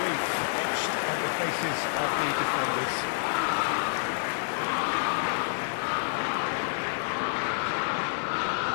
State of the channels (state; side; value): silent; right; digital silence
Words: etched on the faces of the defenders.